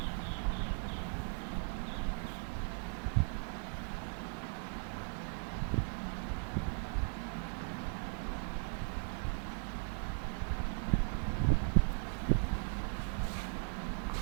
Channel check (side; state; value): left; silent; 52 dB below the other